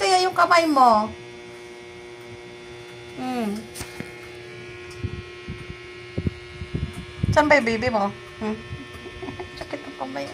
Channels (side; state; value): both; identical; correlation 1.00